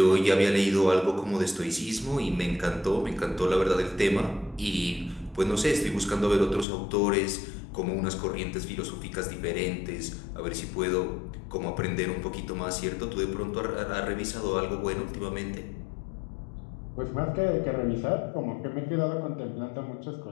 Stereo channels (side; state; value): right; drops out; at 6.7 s